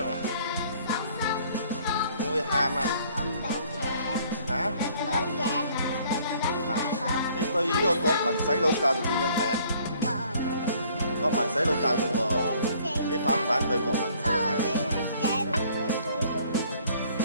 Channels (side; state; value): both; inverted; correlation -0.59